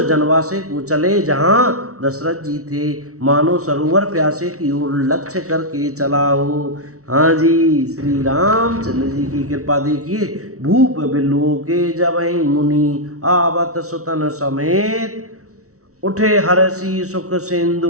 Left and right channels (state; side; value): late; left; 0.64 ms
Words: जनवासे को चले जहाँ दशरथ जी थे, मानो सरोवर प्यासे की ओर लक्ष्य करके चला हो। हाँ जी, श्री रामचंद्र जी की कृपा देखिए। भूप बिलोके जबहि मुनि, आवत सुतन समेत, उठे हर्षि सुख सिंधु